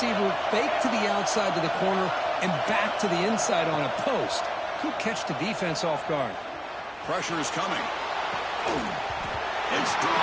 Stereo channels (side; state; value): both; identical; correlation 1.00